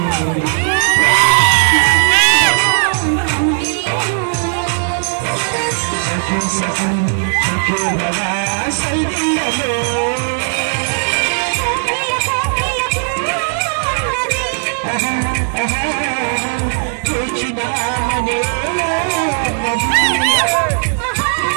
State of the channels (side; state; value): left; silent; digital silence